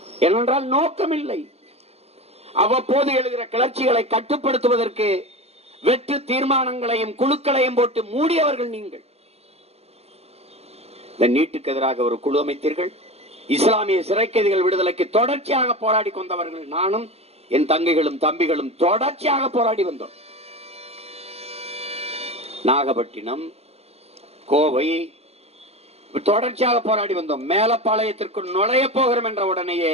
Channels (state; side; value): late; left; 0.30 ms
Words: ஏனென்றால் நோக்கம் இல்லை. அவ்வப்போது எழுகிற கிளர்ச்சிகளை கட்டுப்படுத்துவதற்கு வெற்று தீர்மானங்களையும் குழுக்களையும் போட்டு மூடியவர்கள் நீங்கள். இந்த நீட்டுக்கு எதிராக ஒரு குழு அமைத்தீர்கள். இஸ்லாமிய சிறை கைதிகள் விடுதலைக்கு தொடர்ச்சியாக போராடி கொண்டவர்கள் நானும் என் தங்கைகளும் தம்பிகளும் தொடர்ச்சியாக போராடி வந்தோம். நாகப்பட்டினம், கோவை தொடர்ச்சியாக போராடி வந்தோம். மேலப்பாளையத்திற்கு நுழைய போகிறோம் என்ற உடனேயே